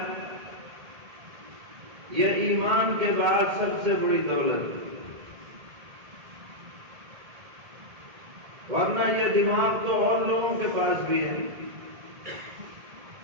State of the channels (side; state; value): left; late; 1.8 ms